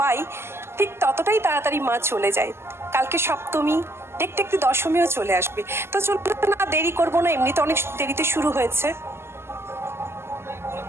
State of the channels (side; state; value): left; late; 0.12 ms